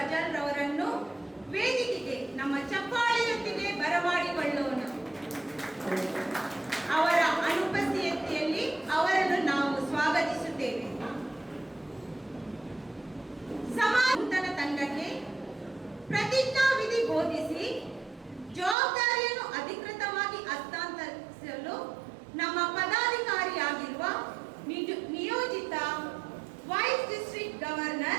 ರವರನ್ನು ವೇದಿಕೆಗೆ ನಮ್ಮ ಚಪ್ಪಾಳೆಯೊಂದಿಗೆ ಬರಮಾಡಿಕೊಳ್ಳೋಣ. ಅವರ ಅನುಪಸ್ಥಿತಿಯಲ್ಲಿ ಅವರನ್ನು ನಾವು ಸ್ವಾಗತಿಸುತ್ತೇವೆ. ಸಮಾಜ ತಂಡಕ್ಕೆ ಪ್ರತಿಜ್ಞಾವಿಧಿ ಬೋಧಿಸಿ ಜವಾಬ್ದಾರಿಯನ್ನು ಅಧಿಕೃತವಾಗಿ ಹಸ್ತಾಂತರಿಸಲು ನಮ್ಮ ಪದಾಧಿಕಾರಿಯಾಗಿರುವ ನಿಯೋಜಿತ vice district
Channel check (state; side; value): drops out; left; at 18.8 s